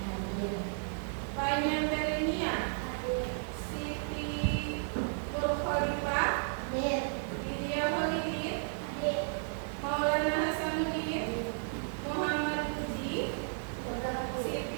Fanya Melania, Siti Nurkhalifah, Lydia Holidin, Maulana Hasanuddin, Muhammad Puji,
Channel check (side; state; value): left; silent; digital silence